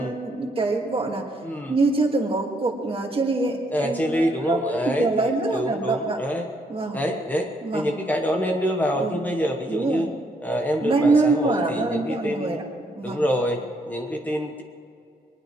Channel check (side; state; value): both; normal; correlation 0.71